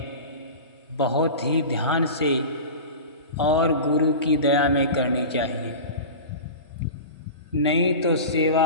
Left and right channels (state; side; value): inverted; both; correlation -0.30